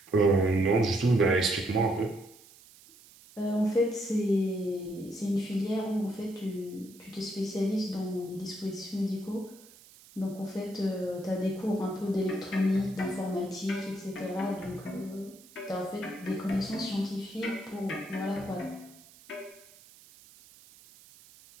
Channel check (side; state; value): right; noise; hiss, 23 dB below the sound